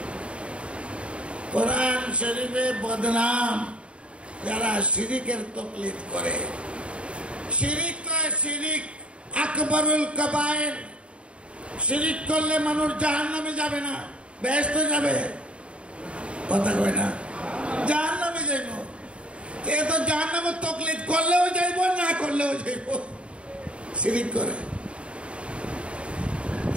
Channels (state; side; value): late; left; 0.059 ms